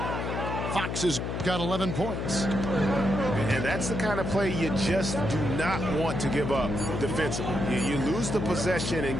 Fox has got 11 points. And that's the kind of play you just do not want to give up defensively. You lose the possession and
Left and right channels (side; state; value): left; noise; hum, 3 dB below the sound